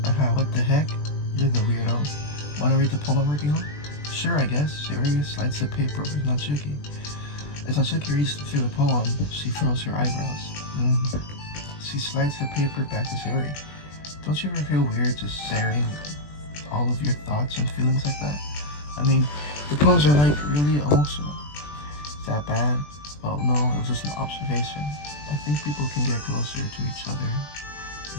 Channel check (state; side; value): late; right; 20 ms